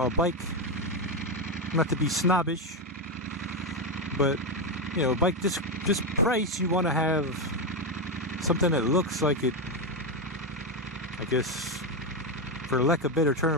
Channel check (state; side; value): normal; both; correlation 0.08